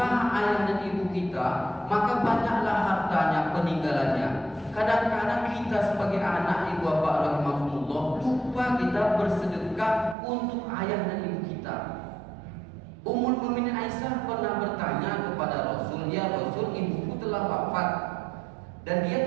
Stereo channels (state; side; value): drops out; left; at 10.2 s